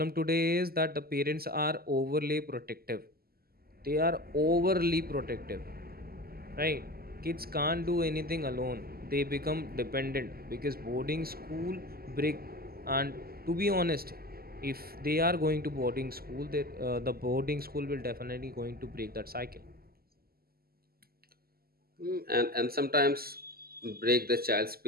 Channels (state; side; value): late; left; 0.44 ms